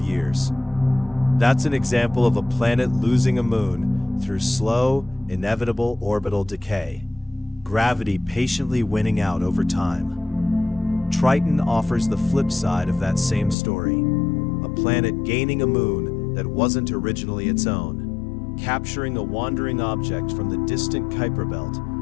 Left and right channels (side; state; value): right; drops out; at 13.6 s